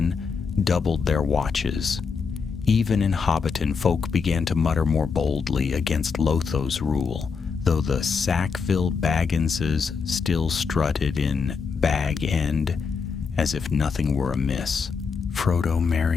doubled their watches. Even in Hobbiton, folk began to mutter more boldly against Lotho's rule, though the Sackville Bagginses still strutted in Bag End as if nothing were amiss. Frodo,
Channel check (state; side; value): quieter; right; 5.4 dB